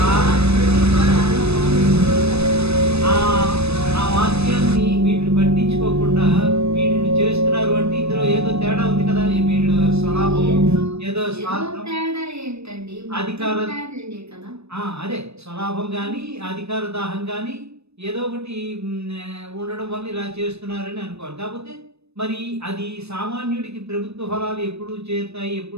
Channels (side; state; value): left; late; 0.79 ms